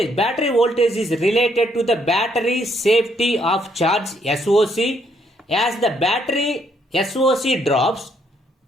battery voltage is related to the battery safety of charge SOC. As the battery SOC drops,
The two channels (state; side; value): normal; both; correlation 0.71